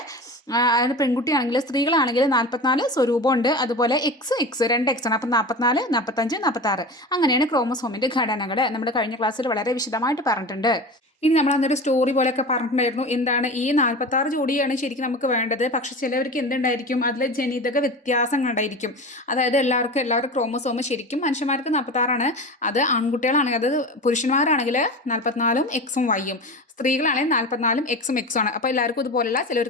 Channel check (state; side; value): normal; both; correlation 0.30